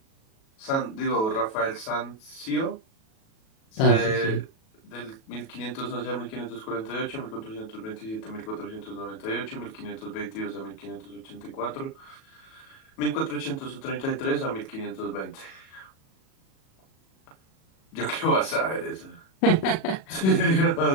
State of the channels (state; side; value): late; right; 37 ms